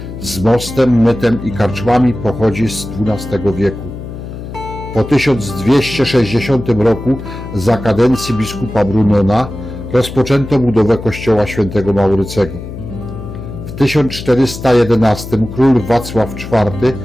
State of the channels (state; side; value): noise; left; hum, 10 dB below the sound